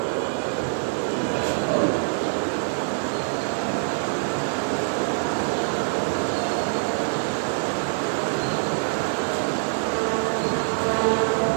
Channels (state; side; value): silent; left; 59 dB below the other